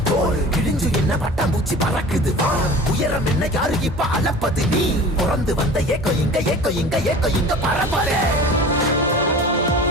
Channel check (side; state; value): both; normal; correlation 0.40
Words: தோல் கிழிஞ்சு என்ன பட்டாம்பூச்சி பறக்குது. உயரம் என்ன யாரு இப்ப அளப்பது, நீ பிறந்து வந்த ஏக்கோ இங்க ஏக்கோ இங்க ஏக்கோ இங்க பரப்பரே.